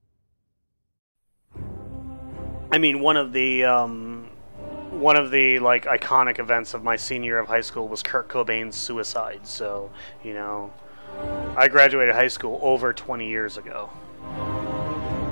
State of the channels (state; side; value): inverted; both; correlation -1.00